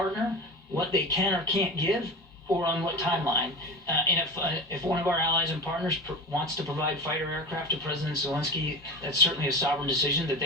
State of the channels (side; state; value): both; normal; correlation 0.29